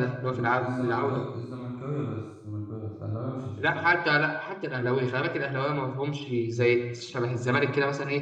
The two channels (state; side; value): identical; both; correlation 1.00